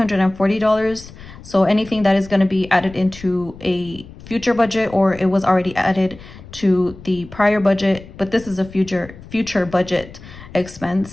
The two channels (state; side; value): noise; left; rumble, 18 dB below the sound